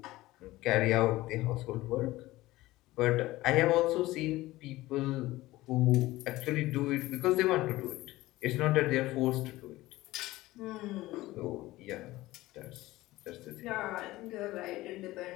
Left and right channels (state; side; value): quieter; right; 17.9 dB